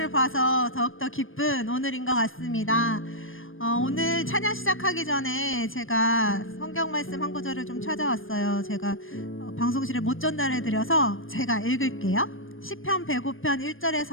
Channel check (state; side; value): late; right; 0.59 ms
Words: 봐서 더욱더 기쁜 오늘인 것 같습니다. 오늘 찬양 시작하기 전에 제가 성경 말씀 한 구절을 좀 찾아왔어요. 제가 방송실에 못 전달해드려서 제가 읽을게요. 시편 105편